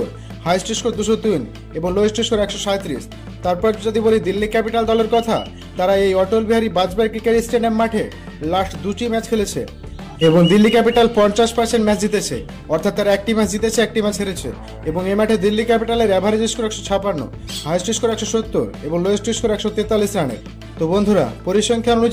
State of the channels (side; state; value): both; identical; correlation 1.00